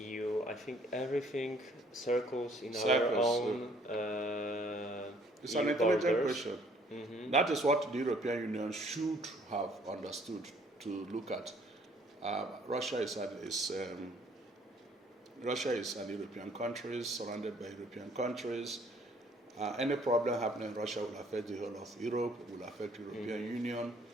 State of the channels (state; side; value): normal; both; correlation 0.61